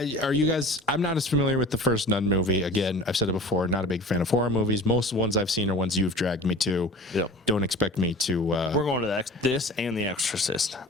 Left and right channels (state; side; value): normal; both; correlation 0.38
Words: Are you guys? I'm not as familiar with the first Nun movie. Again, I've said it before. Not a big fan of horror movies. Most of the ones I've seen are ones you've dragged me to. Yep. Don't expect me to. We're going to this and The Exorcist.